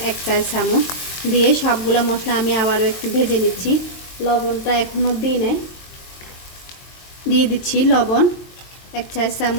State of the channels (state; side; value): late; right; 23 ms